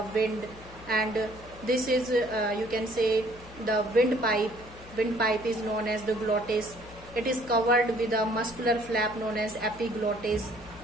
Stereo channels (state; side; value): noise; left; hum, 19 dB below the sound